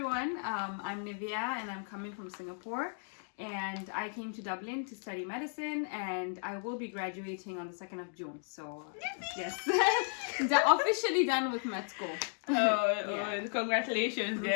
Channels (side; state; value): right; silent; 55 dB below the other